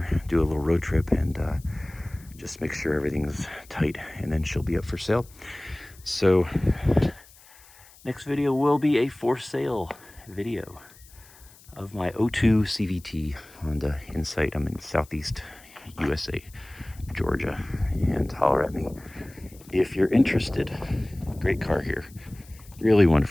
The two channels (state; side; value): noise; left; hiss, 24 dB below the sound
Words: do a little road trip, and just make sure everything's tight, and then she'll be up for sale. So next video will be a for sale video of my 02 CVT Honda Insight. I'm in Southeast USA, Georgia, and holler at me if you're interested. Great car here. Really